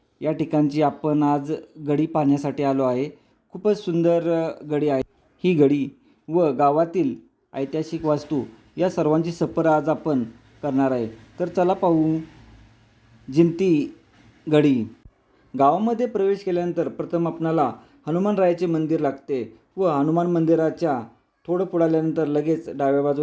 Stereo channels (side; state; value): both; identical; correlation 1.00